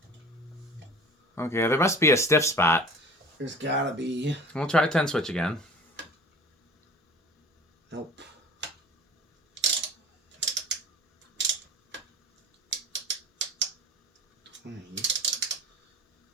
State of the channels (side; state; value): both; normal; correlation 0.42